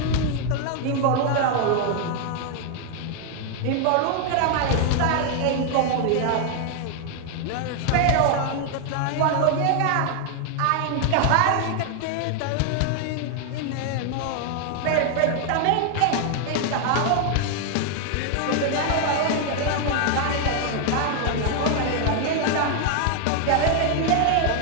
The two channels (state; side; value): different; both; correlation 0.00